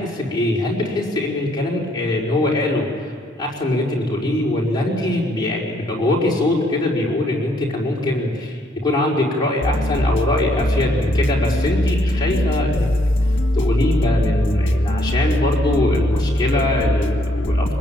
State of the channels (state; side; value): normal; both; correlation 0.69